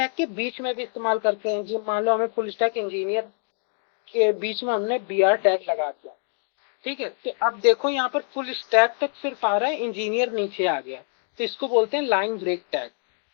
के बीच में भी इस्तेमाल करते हैं, जो मान लो हमें फुल स्टैक इंजीनियर के बीच में हमने BR टैग लगा दिया, ठीक है। तो अब देखो यहाँ पर फुल स्टैक तक सिर्फ आ रहा है, इंजीनियर नीचे आ गया, तो इसको बोलते हैं लाइन ब्रेक टैग,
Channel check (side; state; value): right; silent; 62 dB below the other